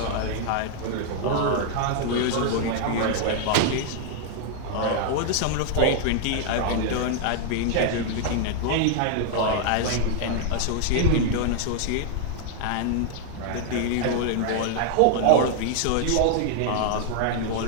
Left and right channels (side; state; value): both; different; correlation 0.00